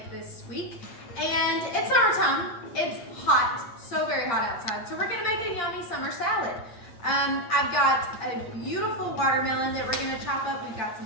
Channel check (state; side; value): late; right; 8.6 ms